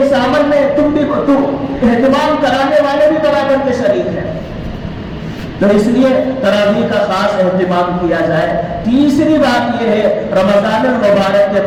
عمل میں تم اہتمام کرانے والے بھی برابر کے شریک ہیں۔ تو اس لیے تراویح کا خاص اہتمام کیا جائے۔ تیسری بات یہ ہے، رمضان المبارک کے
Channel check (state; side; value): identical; both; correlation 1.00